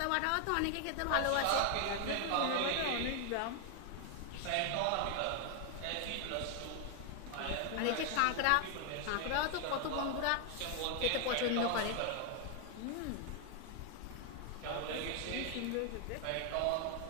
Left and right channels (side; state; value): both; different; correlation 0.00